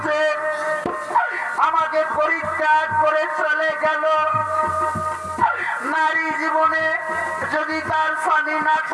আমাকে পরিত্যাগ করে চলে গেল। নারী জীবনে যদি তার স্বামী না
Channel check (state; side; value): identical; both; correlation 1.00